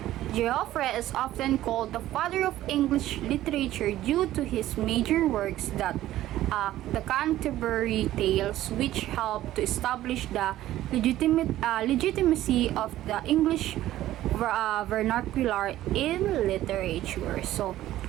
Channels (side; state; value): left; quieter; 14.2 dB